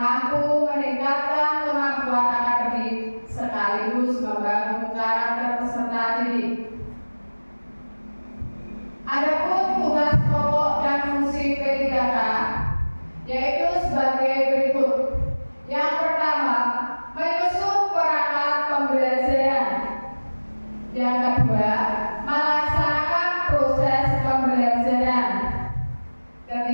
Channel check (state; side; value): inverted; both; correlation -1.00